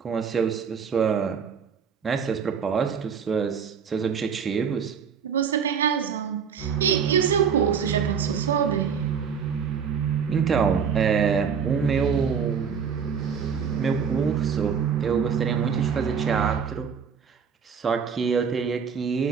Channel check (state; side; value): quieter; left; 6.8 dB